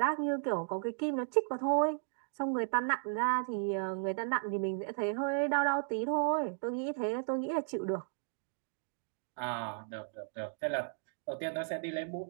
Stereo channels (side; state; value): left; silent; digital silence